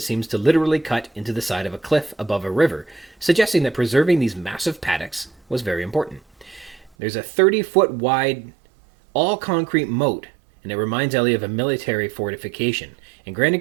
seems to literally cut into the side of a cliff above a river, suggesting that preserving these massive paddocks was very important. There's a 30-foot wide, all-concrete moat, and it reminds Ellie of a military fortification. And Grant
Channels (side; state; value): left; drops out; at 6.9 s